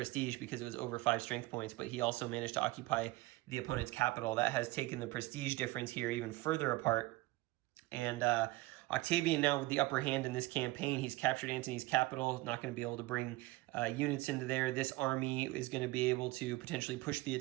because it was over 5 strength points, but he also managed to occupy the opponent's capital. That has taken the prestige difference here even further apart. And Octavian now with the upper hand in this campaign. He's captured Antony's capital, not going to be able to bring units into there. This army is going to be able to potentially push the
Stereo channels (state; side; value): quieter; left; 20.0 dB